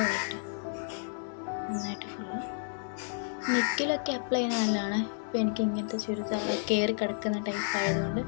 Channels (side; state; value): right; silent; digital silence